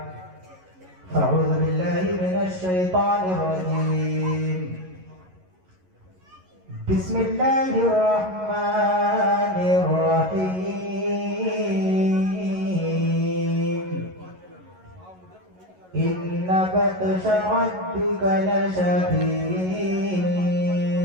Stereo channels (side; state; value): left; late; 11 ms